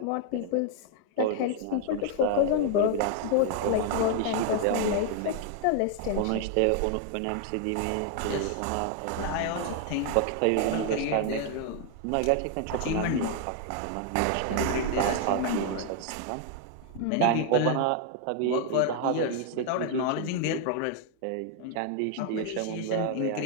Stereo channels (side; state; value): both; different; correlation 0.00